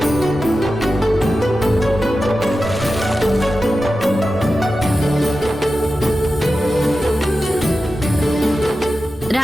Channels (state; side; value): normal; both; correlation 0.92